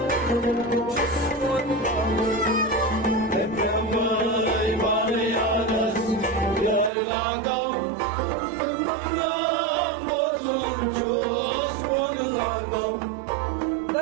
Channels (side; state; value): left; drops out; at 6.9 s